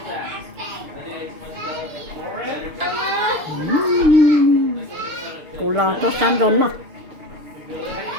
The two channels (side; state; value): left; late; 6.5 ms